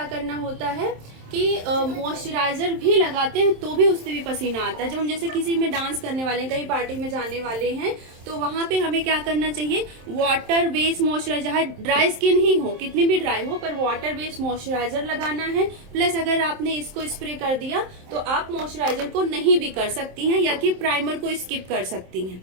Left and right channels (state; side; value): late; left; 27 ms